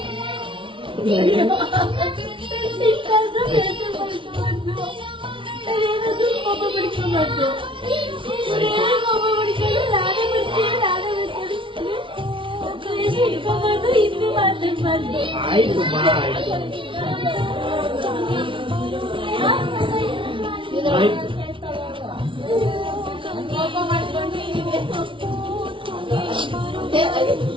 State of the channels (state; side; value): late; left; 0.25 ms